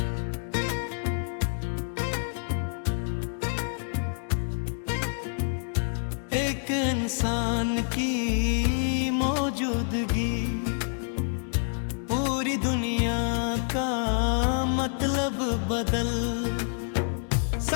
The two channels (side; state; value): right; silent; digital silence